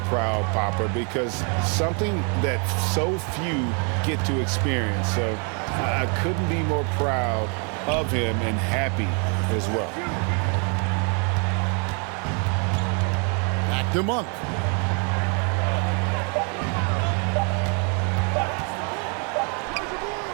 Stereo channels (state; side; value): quieter; left; 37.7 dB